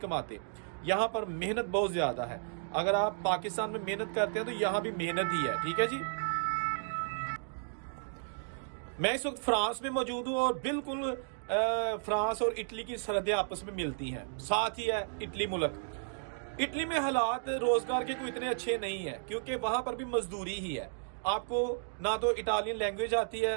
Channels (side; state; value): left; silent; digital silence